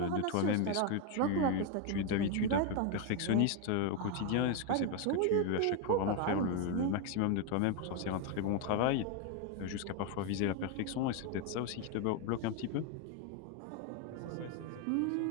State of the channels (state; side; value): different; both; correlation 0.01